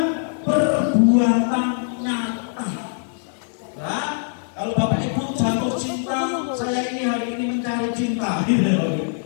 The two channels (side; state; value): right; silent; digital silence